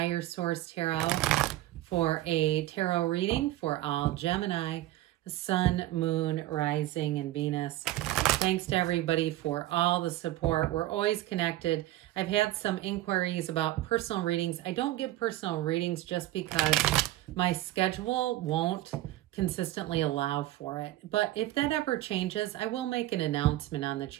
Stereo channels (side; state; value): left; quieter; 15.8 dB